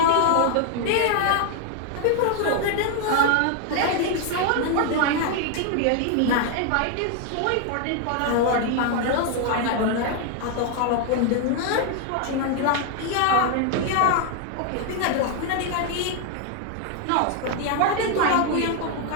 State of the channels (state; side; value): different; both; correlation 0.00